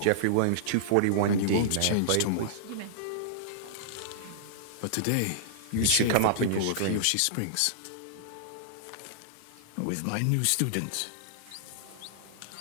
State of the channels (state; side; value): different; both; correlation -0.01